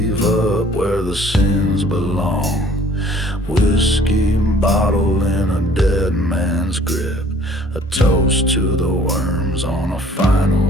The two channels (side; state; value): both; normal; correlation 0.55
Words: up where the sins belong. Whiskey bottle in a dead man's grip. A toast to the worms on a